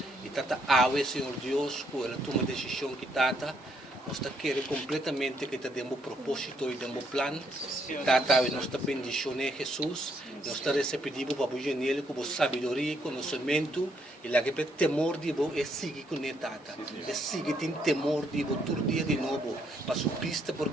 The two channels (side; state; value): both; normal; correlation 0.73